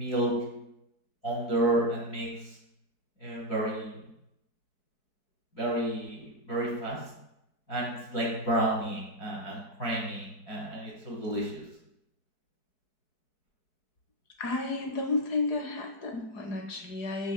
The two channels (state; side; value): late; right; 4.7 ms